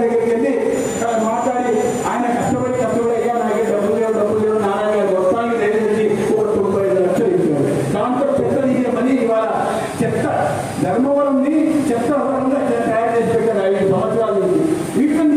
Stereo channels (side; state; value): both; identical; correlation 1.00